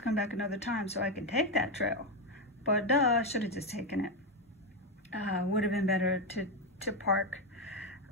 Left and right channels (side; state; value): both; normal; correlation 0.08